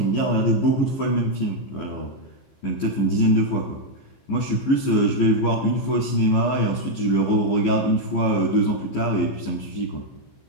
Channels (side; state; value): right; late; 15 ms